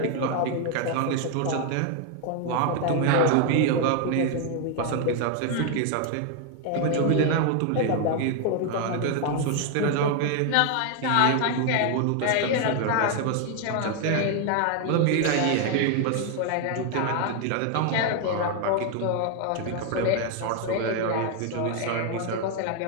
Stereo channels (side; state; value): both; different; correlation 0.00